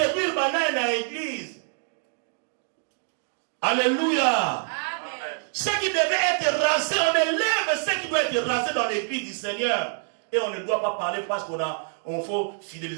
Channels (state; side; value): silent; left; 61 dB below the other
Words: banane na église. Alléluia. Amen. Ce qui devait être rasé, on élève ce qui doit être rasé dans l'église du Seigneur. Et on ne doit pas parler parce qu'on faut